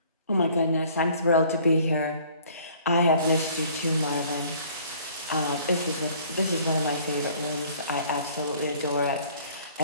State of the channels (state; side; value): inverted; both; correlation -0.55